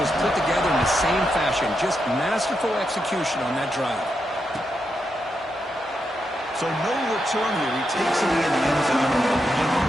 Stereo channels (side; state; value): both; normal; correlation 0.84